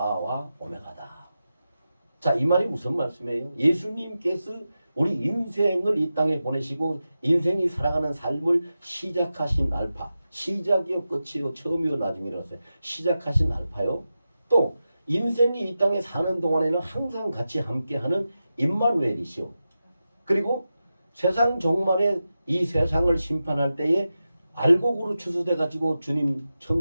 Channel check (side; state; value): both; inverted; correlation -0.92